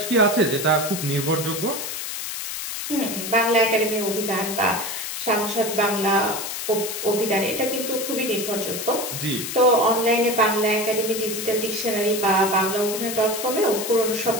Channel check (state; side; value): noise; left; hiss, 5 dB below the sound